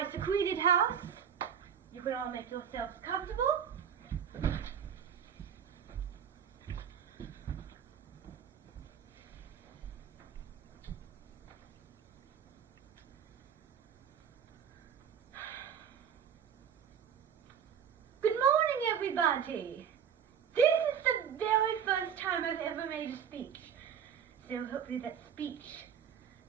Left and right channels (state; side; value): quieter; left; 8.2 dB